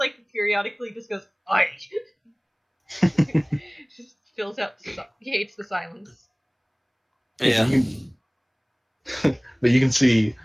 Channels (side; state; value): both; identical; correlation 1.00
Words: periodically just goes, "Aye." Just fills out, he hates the silence. Yeah. But you can see,